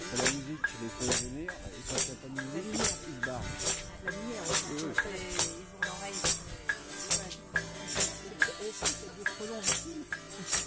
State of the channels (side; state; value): both; identical; correlation 1.00